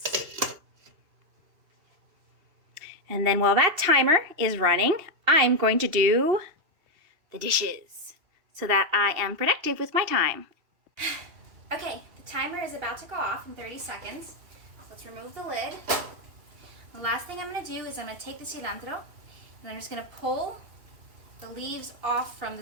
And then while that timer is running, I'm going to do the dishes so that I am productive with my time. Okay, the timer is about to go off in 30 seconds. Let's remove the lid. The last thing I'm going to do is I'm going to take the cilantro and I'm just going to pull the leaves off from the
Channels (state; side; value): late; left; 2.7 ms